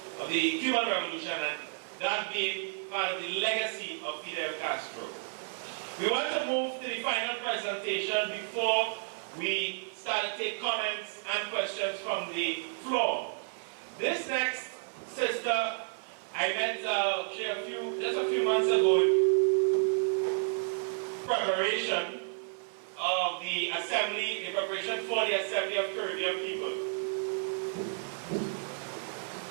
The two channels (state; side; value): silent; left; 57 dB below the other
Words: of the Cuban Revolution, and that being part of the legacy of Fidel Castro. We want to move to the final presentation before we start to take comments and questions from the floor. This next sister I met just a few months ago in preparation of the assembly, in preparation for the Assembly of Caribbean People.